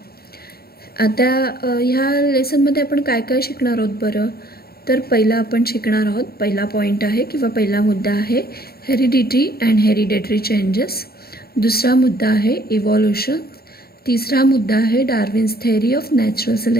आता ह्या लेसनमध्ये आपण काय काय शिकणार आहोत बरं? तर पहिला आपण शिकणार आहोत, पहिला पॉईंट आहे किंवा पहिला मुद्दा आहे हेरिडिटी अँड हेरिडेटरी चेंजेस. दुसरा मुद्दा आहे इव्हॉल्युशन. तिसरा मुद्दा आहे Darwin's theory of natural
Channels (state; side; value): late; right; 0.45 ms